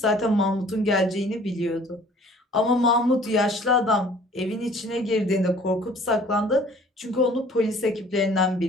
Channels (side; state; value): both; normal; correlation 0.52